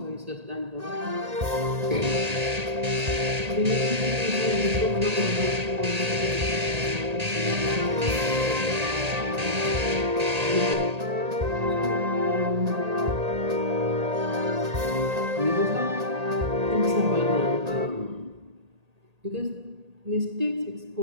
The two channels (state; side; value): late; left; 1.8 ms